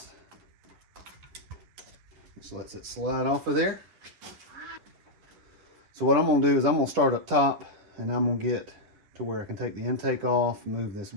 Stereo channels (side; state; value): left; late; 11 ms